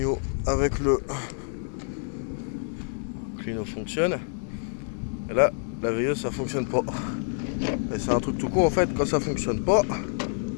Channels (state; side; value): silent; right; 60 dB below the other